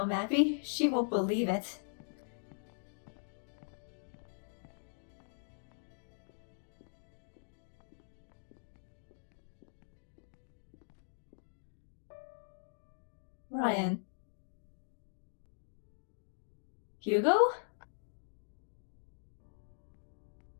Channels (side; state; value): right; silent; digital silence